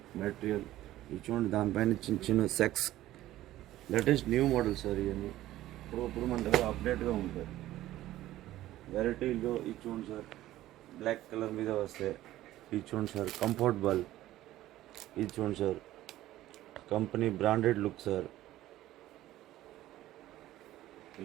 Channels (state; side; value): quieter; left; 14.8 dB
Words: మెటీరియల్, ఇది చూడండి, దానిపైన చిన్న చిన్న sex latest new model sir. ఇవన్నీ ఇప్పుడు మన దగ్గర అప్డేట్గా ఉంటాయి వెరైటీలో. ఇది చూడండి సార్, బ్లాక్ కలర్ మీద వస్తాయి. ఇది చూడండి సార్, కంఫర్టబుల్. ఇది చూడండి sir, company branded look sir.